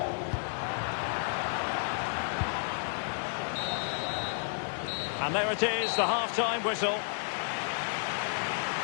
And there it is, the half-time whistle.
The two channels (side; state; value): right; silent; digital silence